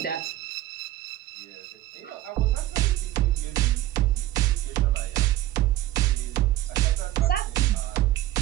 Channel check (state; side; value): quieter; left; 15.0 dB